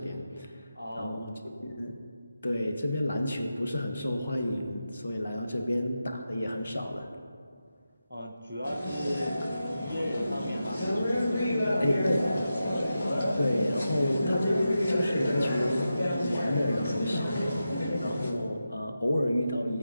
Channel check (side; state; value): both; inverted; correlation -0.90